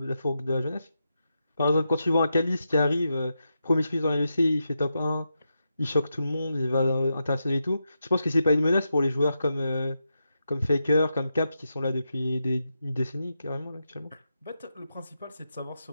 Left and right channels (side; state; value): both; inverted; correlation -0.87